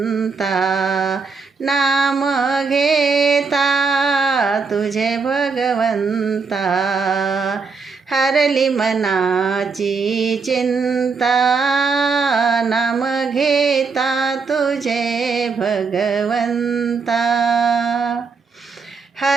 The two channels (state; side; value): quieter; left; 4.8 dB